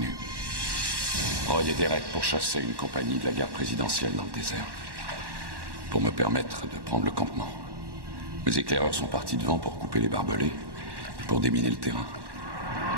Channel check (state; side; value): late; left; 1.1 ms